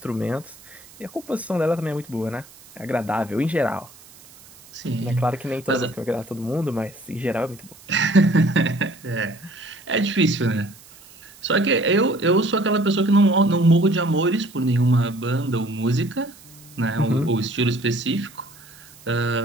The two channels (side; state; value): right; noise; hiss, 23 dB below the sound